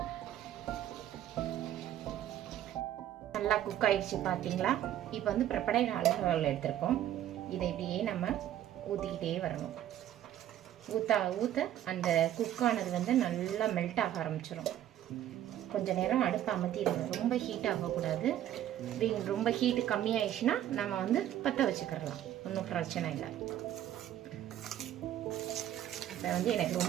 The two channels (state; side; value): quieter; left; 11.8 dB